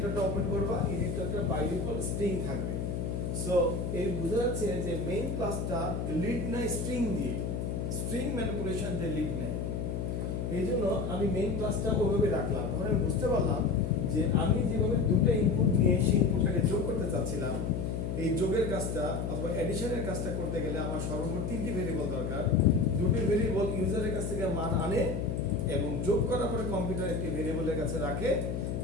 ওপেন করবা, এডিটরটা বাই ডিফল্ট স্ট্রিং থাকবে। সো এই বোঝা যাচ্ছে যে মেইন ক্লাসটা লিড নেয় স্ট্রিং দিয়ে, স্ট্রিং ম্যানিপুলেশন দিয়ে লিড নেয়। এই জন্য আমি মেইন ক্লাসটা ওইভাবে রাখলাম। তখন আমি বুঝতে পারলাম যে আমি যেভাবে দুটো ইনপুট নিয়ে সেই ইনপুটটাকে যোগ করতে চাচ্ছিলাম, এই যোগের কাজটা অথবা এডিশনের কাজটা করতে গেলে আমার সর্বমোট 3টি ভেরিয়েবল দরকার। দুটি ভেরিয়েবল ইউজারের কাছ থেকে মান আনে এবং যোগ করার পরে কম্পিউটার একটি ভেরিয়েবলের কাছে রাখে,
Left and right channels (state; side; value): noise; left; hum, 2 dB below the sound